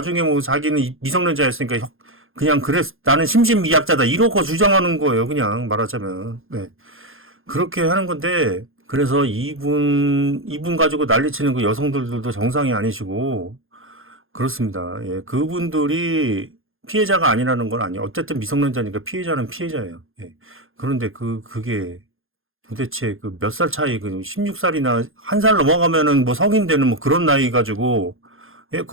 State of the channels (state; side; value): late; left; 0.60 ms